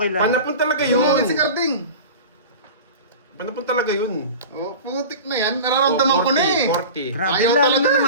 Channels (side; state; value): both; inverted; correlation -0.34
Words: lang. Panapon talaga Pumangit si yun. Carding. Panapon talaga yun. Oh, putik na yan. Nararamdaman ko na eh. 40. Grabe, Ayaw lalo talaga. na